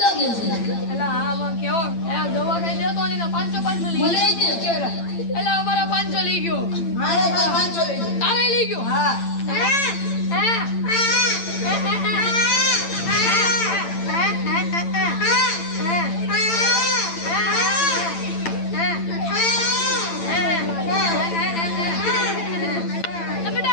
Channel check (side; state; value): right; late; 8.9 ms